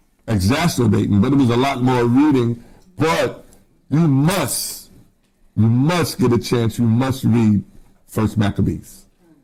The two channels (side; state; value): both; identical; correlation 1.00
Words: exacerbating, but it was a lot more reading. But you must get a chance. You must read 1st Maccabees.